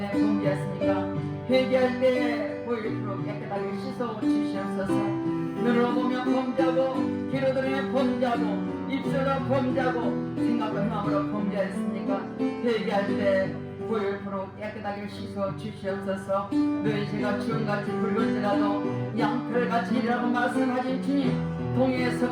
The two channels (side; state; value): both; identical; correlation 1.00